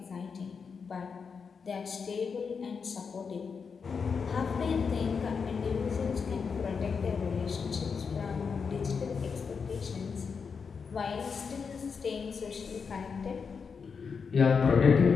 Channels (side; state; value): right; quieter; 5.7 dB